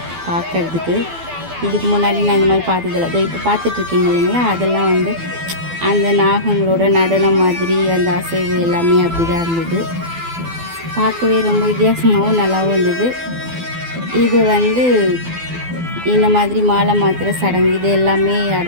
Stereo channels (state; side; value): late; left; 12 ms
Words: பார்க்குறதுக்கு. இதுக்கு முன்னாடி நான் இந்த மாதிரி பார்த்ததில்ல. அதோ இப்போ பார்த்துட்ருக்கீங்க இல்லைங்களா, அதெல்லாம் வந்து அந்த நாகங்களோட நடனம் மாதிரி அந்த அசைவு எல்லாமே அப்படி தான் இருந்தது. பார்க்கவே ரொம்ப வித்தியாசமாகவும் நல்லாவும் இருந்தது. இது வந்து இந்த மாதிரி மாலை மாத்திர சடங்கு இது எல்லாமே